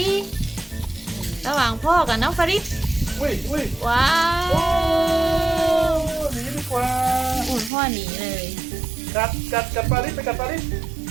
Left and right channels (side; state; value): left; drops out; at 7.7 s